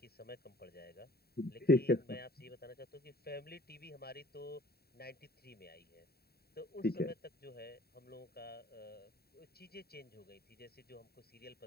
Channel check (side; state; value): right; late; 0.46 ms